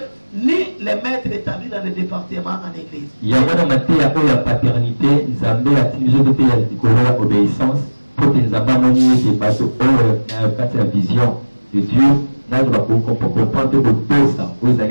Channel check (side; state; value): both; inverted; correlation -1.00